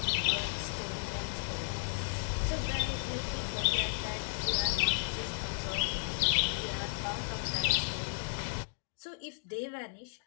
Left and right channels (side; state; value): right; silent; digital silence